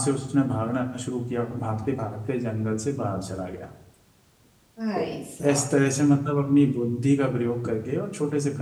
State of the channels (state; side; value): identical; both; correlation 1.00